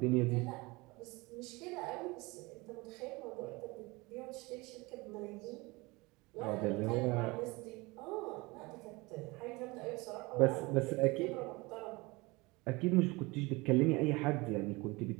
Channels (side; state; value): left; quieter; 23.9 dB